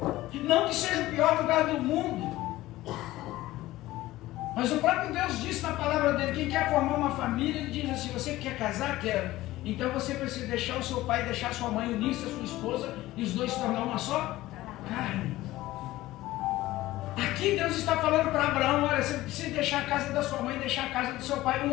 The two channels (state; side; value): quieter; right; 16.8 dB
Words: Não que seja o pior lugar do mundo, mas o próprio Deus disse na palavra dele, quem quer formar uma família, ele diz assim, você quer casar? Quero. Então você precisa deixar o seu pai, deixar sua mãe, unir-se a sua esposa, e os dois se tornar uma só carne. Aqui Deus está falando para Abraão, olha, você precisa deixar a casa da sua mãe, deixar a casa do seu pai. Um